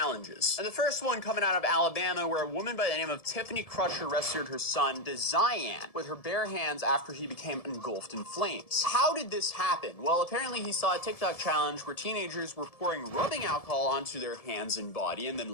And the first one coming out of Alabama, where a woman by the name of Tiffany Crusher rescued her son, Desian, with her bare hands after he became engulfed in flames. How did this happen? Well, apparently he saw a TikTok challenge where teenagers were pouring rubbing alcohol onto their hands and body and then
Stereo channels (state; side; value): late; right; 1.7 ms